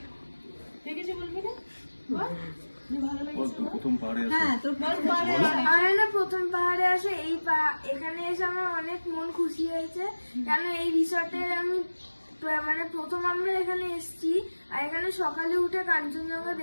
কিছু বলবি না? বল, যে ভালো লেগেছে। প্রথম পাহাড়ে হ্যাঁ, তোর বল। আমার না প্রথম পাহাড়ে আসে এখানে এসে আমার অনেক মন খুশি হয়েছে, কেন এই রিসর্টের আমি মানে প্রথম আমরা এখানে এসেছি, আর এখানে সকালে উঠে কাঞ্চনজঙ্ঘা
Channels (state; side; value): inverted; both; correlation -1.00